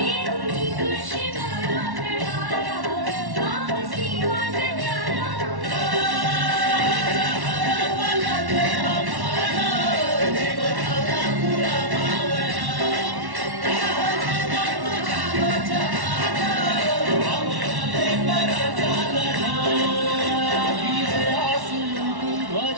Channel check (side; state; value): left; late; 1.1 ms